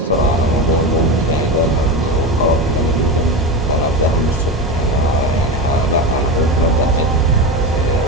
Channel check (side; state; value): both; normal; correlation 0.21